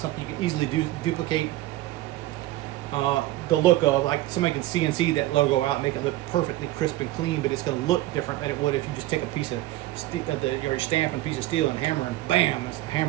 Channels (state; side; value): quieter; left; 16.4 dB